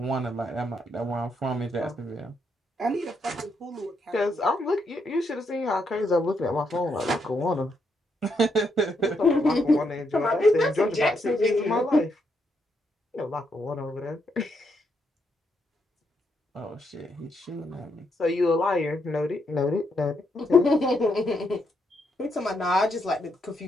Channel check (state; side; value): normal; both; correlation 0.78